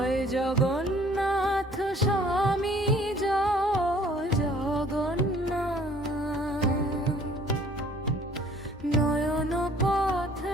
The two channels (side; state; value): both; normal; correlation 0.56